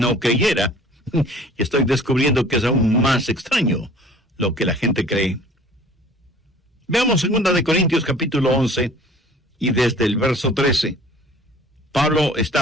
creyera, y estoy descubriendo que es aún más extraño lo que la gente cree. Veamos 2 de Corintios capítulo 11, y desde el verso 13. Pablo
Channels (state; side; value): normal; both; correlation 0.49